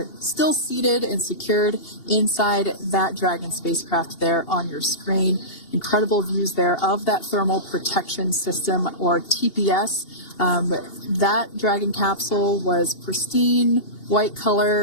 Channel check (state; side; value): late; right; 2.8 ms